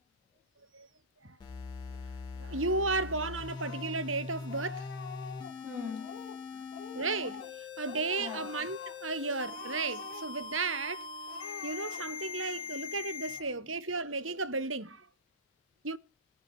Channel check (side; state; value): both; normal; correlation -0.18